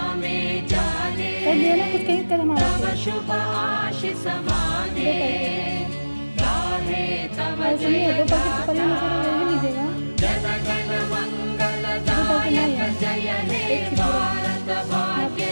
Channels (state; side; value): inverted; both; correlation -1.00